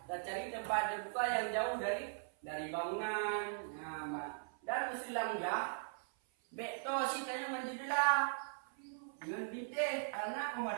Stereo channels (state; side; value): silent; left; 51 dB below the other